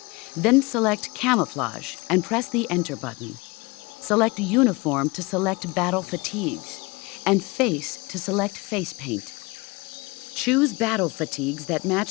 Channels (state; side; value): quieter; right; 25.1 dB